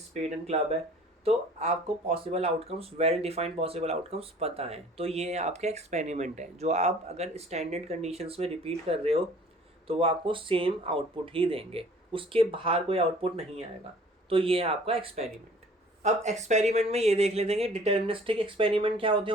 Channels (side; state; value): both; normal; correlation 0.51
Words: and club है, तो आपको possible outcomes, well defined possible outcomes पता है। तो ये आपका एक्सपेरिमेंट है जो आप अगर स्टैंडर्ड कंडीशंस में रिपीट कर रहे हो तो वो आपको सेम आउटपुट ही देंगे, उसके बाहर कोई आउटपुट नहीं आएगा। तो ये है आपका एक्सपेरिमेंट। अब एक्सपेरिमेंट में ये देख लेते हैं कि डिटर्मिनिस्टिक एक्सपेरिमेंट क्या होते